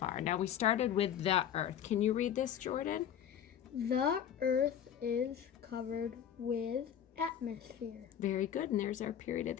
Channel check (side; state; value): right; quieter; 9.5 dB